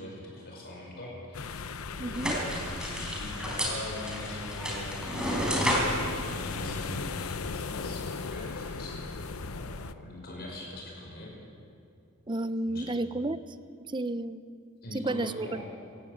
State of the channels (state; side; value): normal; both; correlation 0.43